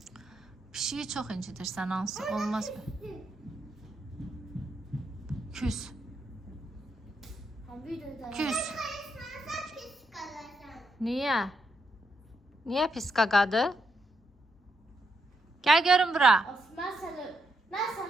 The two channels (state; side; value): normal; both; correlation 0.80